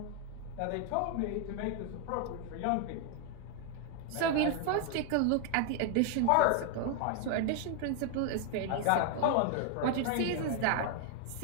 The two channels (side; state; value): both; different; correlation 0.00